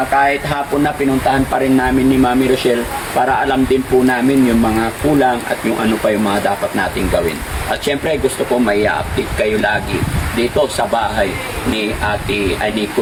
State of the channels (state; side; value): identical; both; correlation 1.00